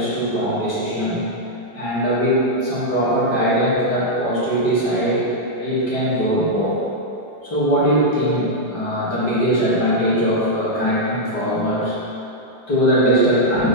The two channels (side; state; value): right; late; 5.1 ms